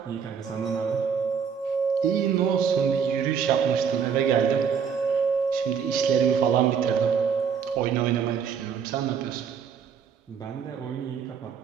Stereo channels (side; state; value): left; quieter; 6.9 dB